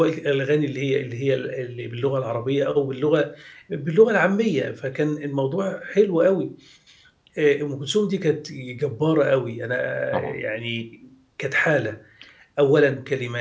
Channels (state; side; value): identical; both; correlation 1.00